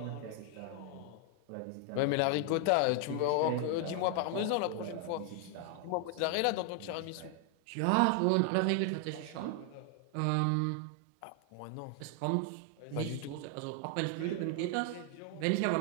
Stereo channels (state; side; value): different; both; correlation 0.00